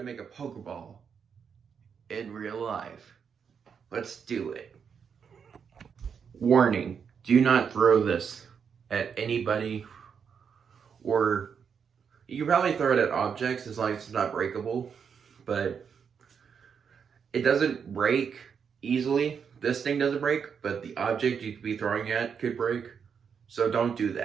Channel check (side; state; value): left; quieter; 6.8 dB